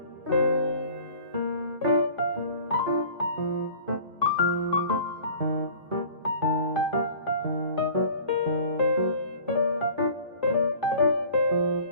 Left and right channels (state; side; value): inverted; both; correlation -0.46